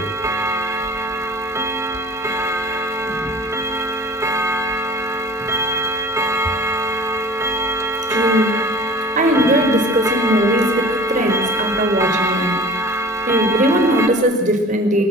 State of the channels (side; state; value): both; normal; correlation 0.43